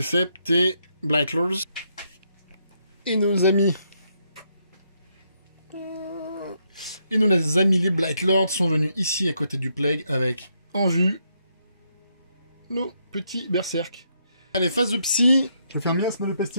tes Blightlords. Et nos amis... Et nos amis les Blightlords sont venus ici à côté du Plague avec en vue nos petits berserk. Allez, phase de psy. Je vais faire miasme de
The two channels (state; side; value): inverted; both; correlation -0.77